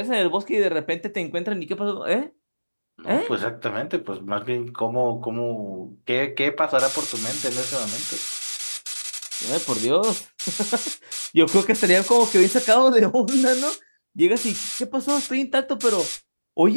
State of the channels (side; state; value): both; inverted; correlation -1.00